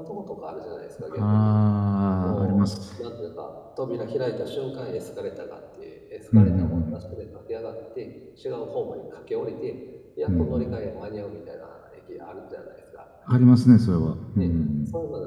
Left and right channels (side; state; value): both; identical; correlation 1.00